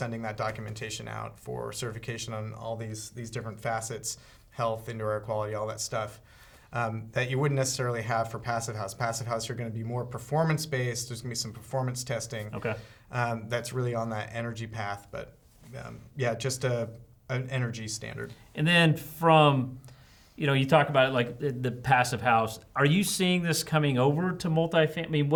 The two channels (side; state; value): both; identical; correlation 1.00